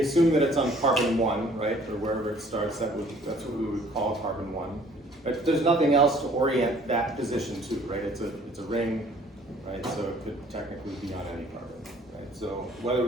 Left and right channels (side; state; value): both; normal; correlation 0.56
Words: assume that it's on carbon 1, right, or wherever it starts. That's what we would call carbon 1. But there's nothing else to orient that position to, right? It's a ring, right? So it could technically be on any carbon. So whether